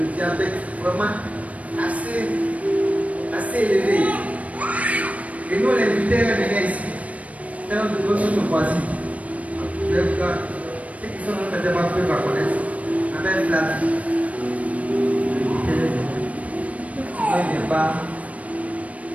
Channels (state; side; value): late; left; 0.067 ms